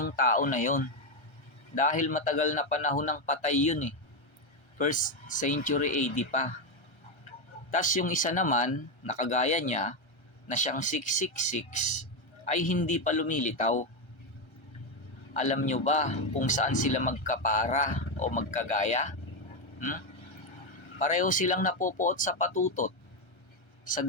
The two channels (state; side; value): late; right; 1.3 ms